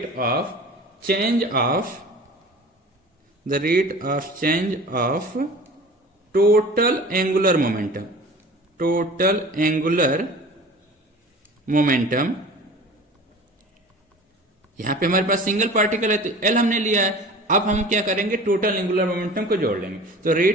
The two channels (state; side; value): normal; both; correlation 0.40